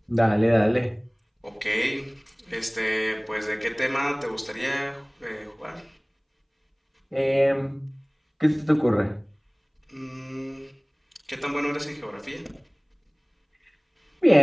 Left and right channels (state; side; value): identical; both; correlation 1.00